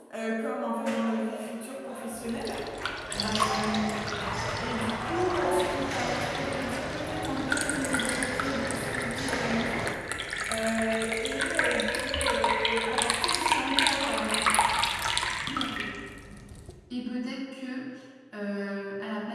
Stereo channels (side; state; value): both; identical; correlation 1.00